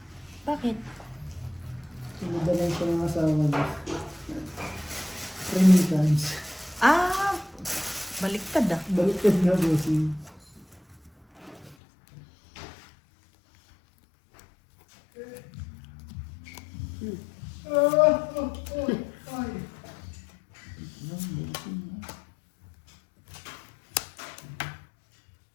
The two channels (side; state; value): right; drops out; at 11.8 s